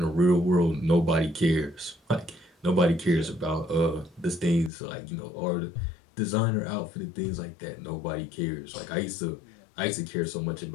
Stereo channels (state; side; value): drops out; right; at 4.7 s